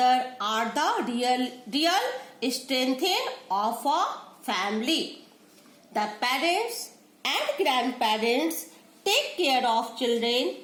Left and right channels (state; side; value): identical; both; correlation 1.00